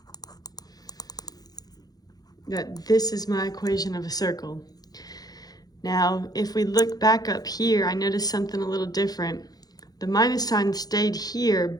that this is my equation of a circle. Now, if we look back up here, I noticed something a little different. The minus sign stayed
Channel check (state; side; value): late; right; 0.19 ms